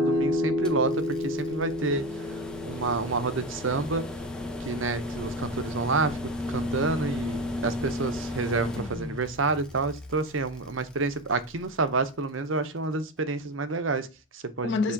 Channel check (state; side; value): normal; both; correlation 0.20